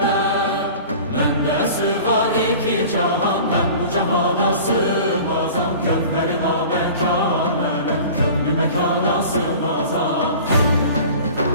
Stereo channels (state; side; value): inverted; both; correlation -0.41